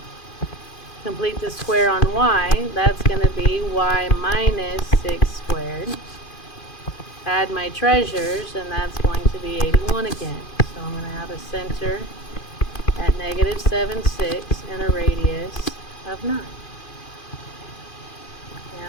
Complete the square on y, that's going to be y minus 6 squared. Add my treasures, and that's going to be 81 again. So I'm going to have a center at negative 7, 6, and a radius of 9.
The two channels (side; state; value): right; late; 2.5 ms